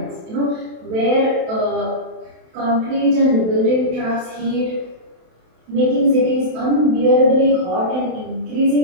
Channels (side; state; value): left; late; 27 ms